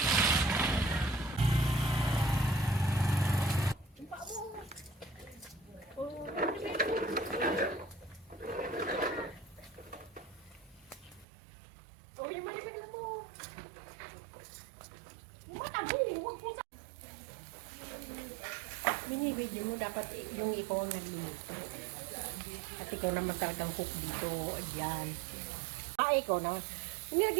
Binibidyo mo dapat yung ikaw ang nagluluto. At ikaw naman talagang cook dito. Ayan. Ikaw naman.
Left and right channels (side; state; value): left; drops out; at 11.2 s